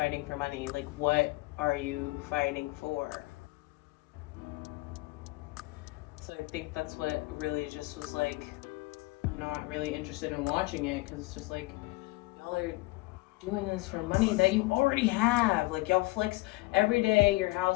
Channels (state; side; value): quieter; right; 22.1 dB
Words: for money. Like, what are you fighting for? So I think that's what really just was like, not really interested in watching it, because it's just like, y'all are doing this for money that you already have. Like, y'all flex every day your